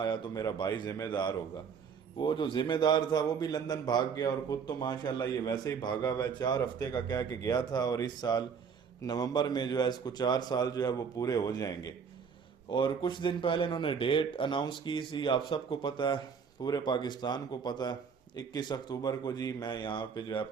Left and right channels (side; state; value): left; quieter; 6.4 dB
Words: तो मेरा भाई जिम्मेदार होगा। वो जो जिम्मेदार था वो भी लंदन भाग गया, और खुद तो माशाल्लाह ये वैसे ही भागा हुआ है। 4 हफ्ते का कह के गया था, और इस साल नवंबर में जो है इसको 4 साल जो है वो पूरे हो जाएंगे। और कुछ दिन पहले इन्होंने डेट अनाउंस की थी, आप सबको पता है, पूरे पाकिस्तान को पता है। 21 अक्टूबर को जी मैं यहाँ पे जो है